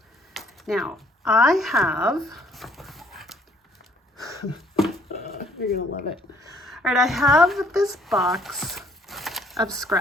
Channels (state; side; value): normal; both; correlation 0.64